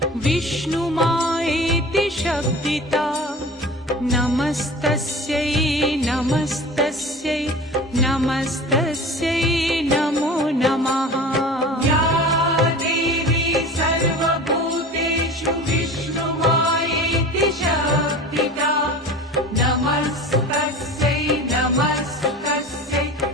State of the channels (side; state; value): both; normal; correlation 0.37